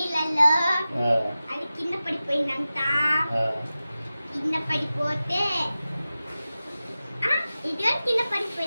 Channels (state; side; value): inverted; both; correlation -0.95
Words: అది కింద పడిపోయిందంట. కింద పడిపోతే ఇది కింద